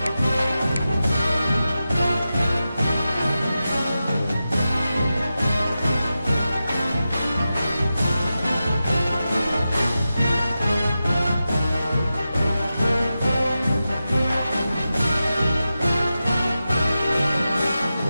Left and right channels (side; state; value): both; inverted; correlation -0.92